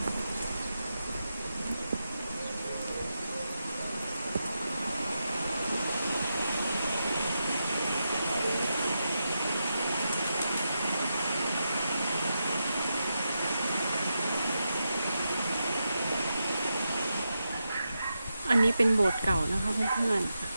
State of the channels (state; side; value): inverted; both; correlation -0.88